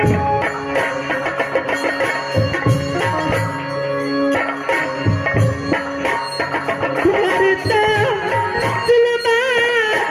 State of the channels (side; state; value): both; identical; correlation 1.00